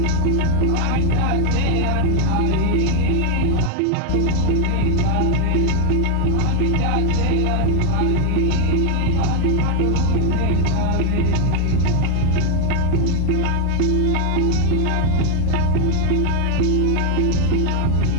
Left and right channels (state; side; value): different; both; correlation 0.00